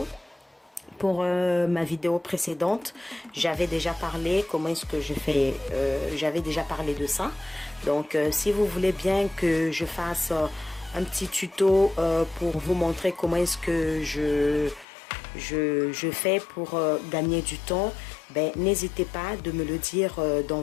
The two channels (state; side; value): drops out; right; at 14.9 s